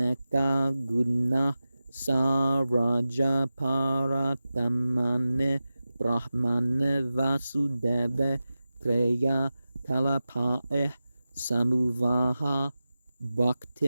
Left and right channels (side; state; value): both; inverted; correlation -0.94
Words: guna saraja paratamane brahmane vasudeve treya kalapae samuvaha